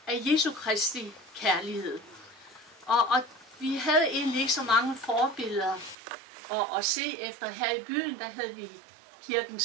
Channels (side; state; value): left; drops out; at 6.0 s